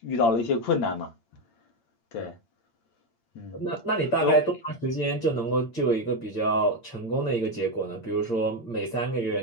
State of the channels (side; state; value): right; late; 8.7 ms